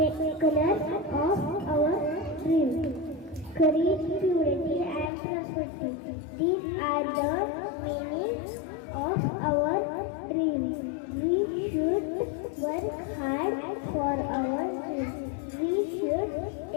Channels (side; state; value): right; drops out; at 5.1 s